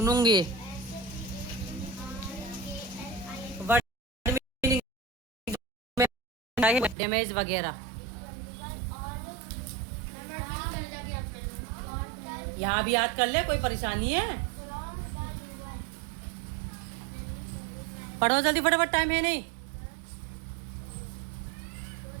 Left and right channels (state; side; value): drops out; left; at 7.0 s